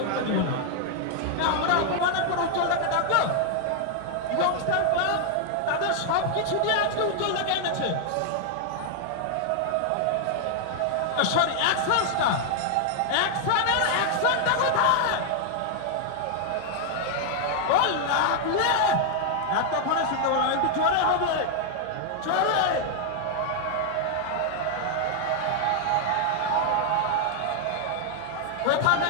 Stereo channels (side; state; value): both; different; correlation 0.00